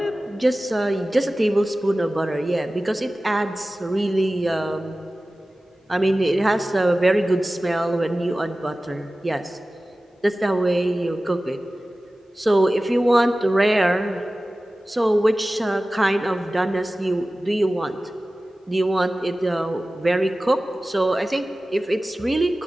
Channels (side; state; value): both; normal; correlation 0.96